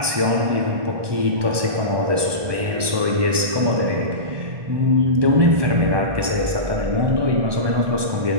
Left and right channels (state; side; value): late; left; 1.2 ms